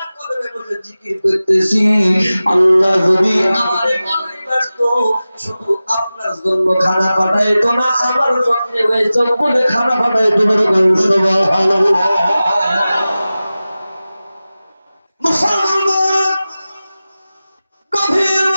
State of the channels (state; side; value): inverted; both; correlation -0.96